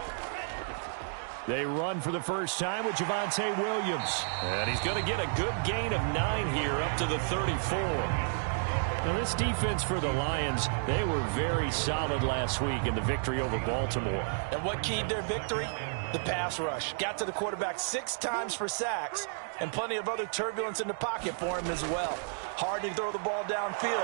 They run for the first time with Javonte Williams. And he's going to get a good gain of 9 here up to the 34. Now this defense for the Lions, they were very solid last week in the victory over Baltimore. And what keyed their victory? The pass rush. Got to the quarterback 6 times for sacks and plenty of other turbulence in the pocket for him as well. Hard to throw the ball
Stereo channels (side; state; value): left; silent; digital silence